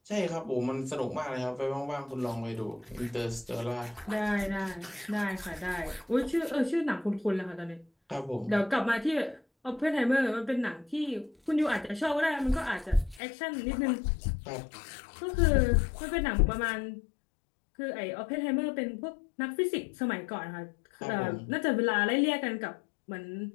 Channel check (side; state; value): right; drops out; at 13.2 s